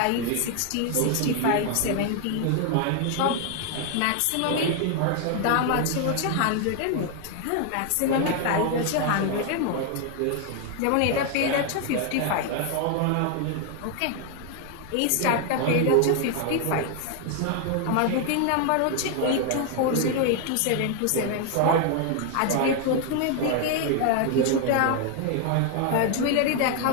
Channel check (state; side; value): different; both; correlation 0.01